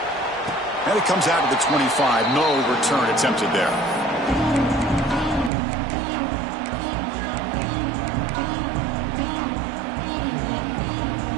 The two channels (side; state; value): left; drops out; at 5.5 s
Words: And it comes out to the 25. No return attempted there.